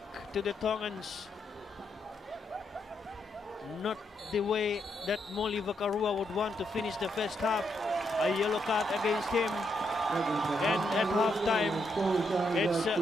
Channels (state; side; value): normal; both; correlation 0.79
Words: to the Tongans. Not the way that Mulivakaroa would want to finish the first half. A yellow card against him. And at half time, it's